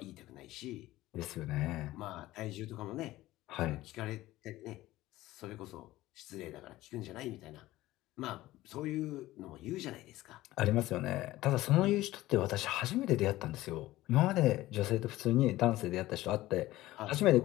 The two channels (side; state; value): right; quieter; 16.7 dB